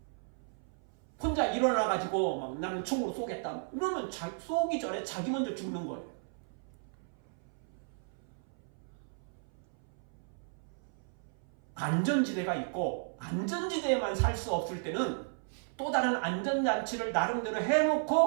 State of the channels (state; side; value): silent; left; 55 dB below the other